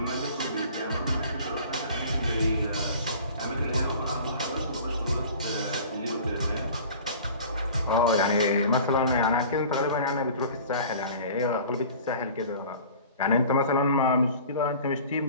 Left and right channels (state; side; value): inverted; both; correlation -0.43